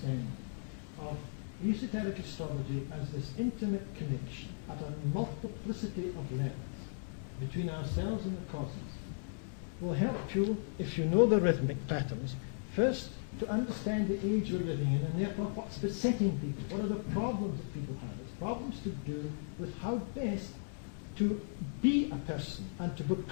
of esoteric astrology as this intimate connection at a multiplicity of levels between ourselves and the cosmos will help you, if you know the rhythmic patterns, first to understand the age we're living in, and therefore what's besetting people, what are the problems that people have. It's problems to do with how best to be a person and to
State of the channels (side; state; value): right; silent; digital silence